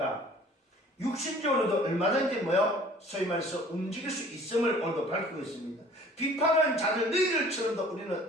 육신적으로도 얼마든지 소위 말해서 움직일 수 있음을 오늘도 밝히고 있습니다. 비판하는 자들 너희들처럼도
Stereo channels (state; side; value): normal; both; correlation 0.50